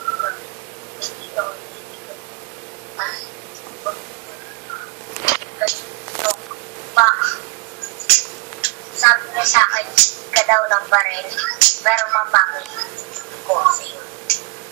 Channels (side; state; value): left; quieter; 29.0 dB